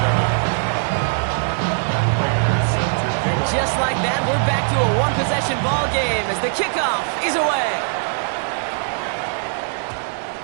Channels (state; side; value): silent; left; 60 dB below the other